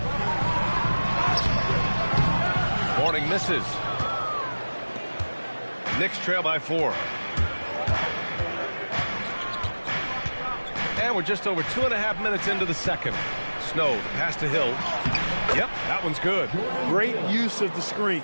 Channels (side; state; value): both; inverted; correlation -1.00